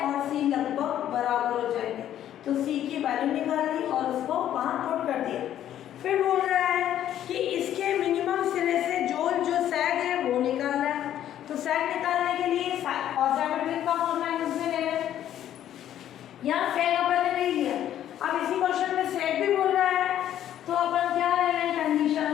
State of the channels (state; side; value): quieter; right; 11.3 dB